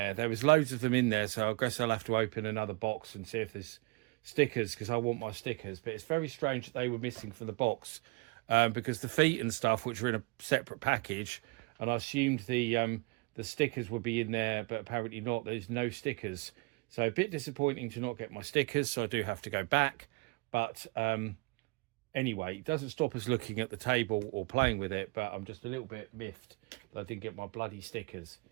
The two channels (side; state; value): left; quieter; 26.2 dB